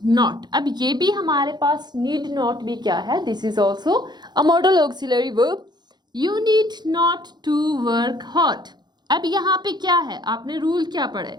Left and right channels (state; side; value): late; left; 0.21 ms